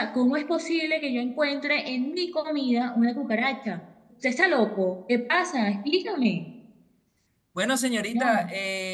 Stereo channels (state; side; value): identical; both; correlation 1.00